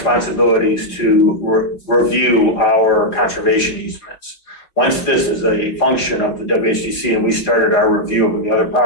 to review our conservation easements. Once this is a function of the WHDC and we started our review of the other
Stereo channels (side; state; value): right; late; 4.7 ms